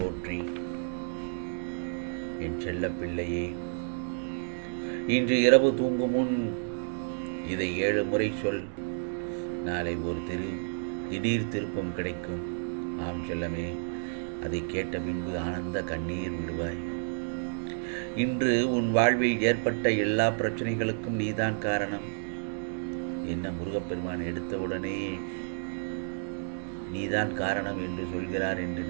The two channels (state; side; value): silent; left; digital silence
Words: என் செல்ல பிள்ளையே, இன்று இரவு தூங்கும் முன் இதை 7 முறை சொல். நாளை ஒரு திடீர் திருப்பம் கிடைக்கும். ஆம் செல்லமே, அதை கேட்ட பின்பு ஆனந்த கண்ணீர் விடுவாய். இன்று உன் வாழ்வில் ஏற்பட்ட எல்லா பிரச்சனைகளுக்கும் நீதான் காரணம். என்ன முருகப்பெருமான் எடுத்தவுடனே நீதான் காரணம் என்று சொல்கிறார் என்று